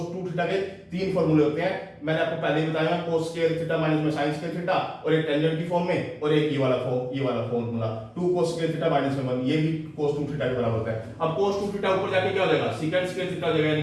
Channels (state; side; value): identical; both; correlation 1.00